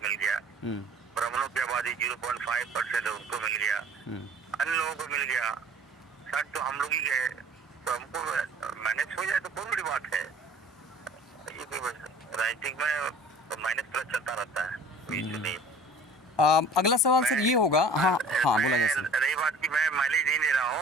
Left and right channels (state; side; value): normal; both; correlation 0.47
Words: मिल गया, ब्राह्मणों की आबादी 0.5% है उनको मिल गया, अन्य लोगों को मिल गया, 60 तो हम लोग ही गए, तो हमको मैनेज हो जाए तो बहुत बड़ी बात है। ये कोई राजनीतिक में तो माइनस प्लस चलता रहता है, कोई इशू नहीं। अगला सवाल सर ये होगा। हाँ बोला जाए सर। रही बात की मैं माइलेज नहीं ले रहा